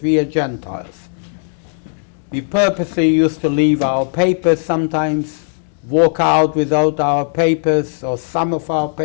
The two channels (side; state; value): right; silent; digital silence